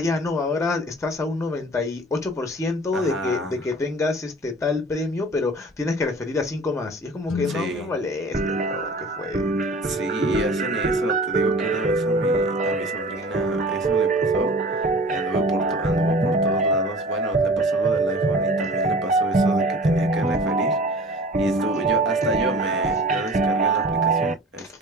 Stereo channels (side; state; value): both; normal; correlation 0.43